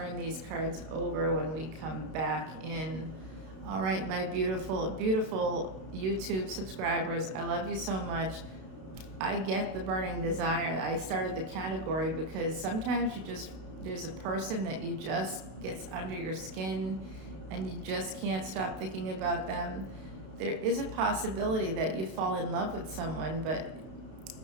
these cards over when we come back in. All right, my beautiful, beautiful YouTube subscribers, I love you so much. I get the burning desire. I started the category because sometimes there's a person that you just gets under your skin and you just can't stop thinking about them. There is a possibility that you fall in love with someone, but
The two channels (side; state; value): left; late; 32 ms